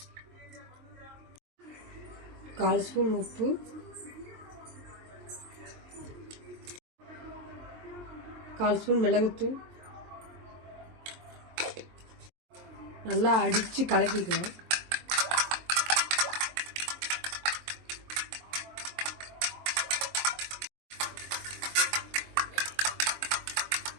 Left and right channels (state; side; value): late; left; 23 ms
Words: கால் ஸ்பூன் உப்பு, கால் ஸ்பூன் மிளகுத்தூள், நல்லா அடித்து கலக்கிக்கலாம்.